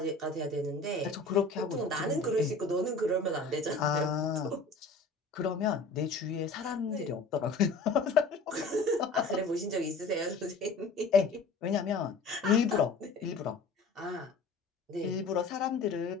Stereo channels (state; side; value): quieter; right; 3.6 dB